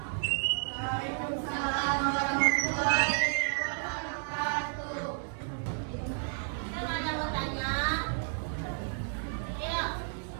Waalaikumsalam warahmatullahi wabarakatuh. Kan ada mau tanya? Yuk.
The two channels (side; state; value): left; silent; 57 dB below the other